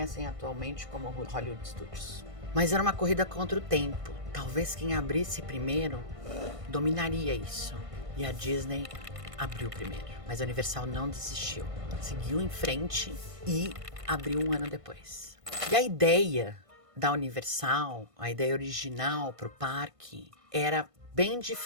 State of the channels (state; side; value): late; left; 1.5 ms